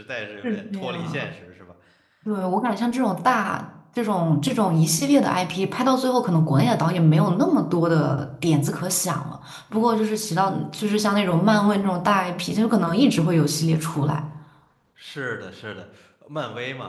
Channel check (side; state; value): both; identical; correlation 1.00